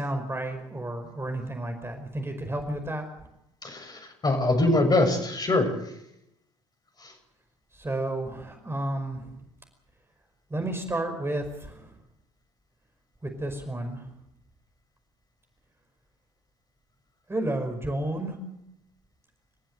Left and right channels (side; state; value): both; normal; correlation 0.69